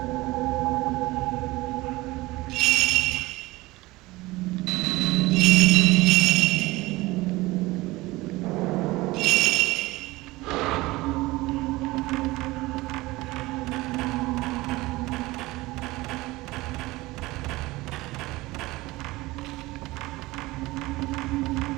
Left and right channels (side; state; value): left; quieter; 20.2 dB